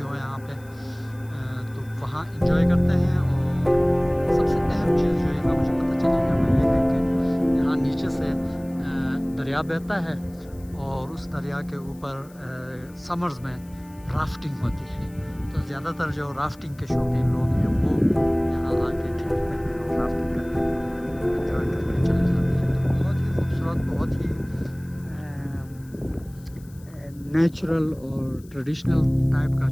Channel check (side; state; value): left; noise; hiss, 27 dB below the sound